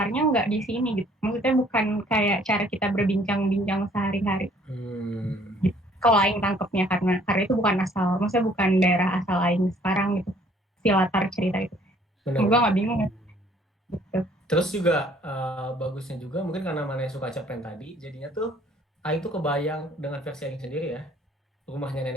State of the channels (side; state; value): both; normal; correlation 0.59